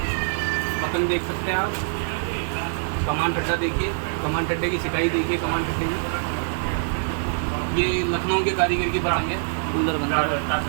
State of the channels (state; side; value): silent; left; digital silence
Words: पतंग देख सकते हैं आप। कमान ठड्डा देखिए, कमान ठड्डे की सिकाई देखिए, कमान ठड्डे की। ये लखनऊ के कारीगर की पतंग है, सुंदर बनता